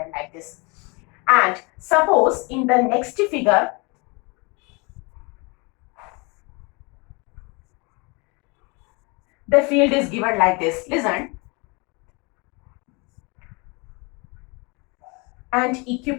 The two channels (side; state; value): right; quieter; 29.4 dB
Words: like this. And suppose in the next figure, the field is given like this. Listen. And